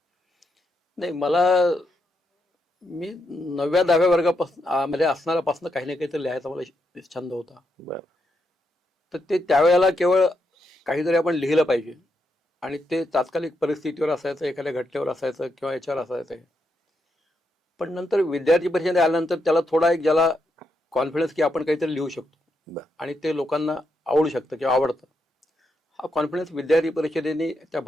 नाही, मी 9व्या-10व्या वर्गापासून मध्ये असणाऱ्यापासून काही ना काहीतरी लिहायचा मला छंद होता. तर ते त्यावेळेला केवळ काहीतरी आपण लिहिलं पाहिजे आणि ते तात्कालिक परिस्थितीवर असायचं, एखाद्या घटनेवर असायचं किंवा याच्यावर असायचं. पण नंतर विद्यार्थी परिषदेत आल्यानंतर त्याला थोडा एक ज्याला कॉन्फिडन्स की आपण काहीतरी लिहू शकतो बरं. आणि ते लोकांना आवडू शकतं किंवा आवडतं, हा कॉन्फिडन्स विद्यार्थी परिषदेने त्या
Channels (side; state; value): both; normal; correlation 0.82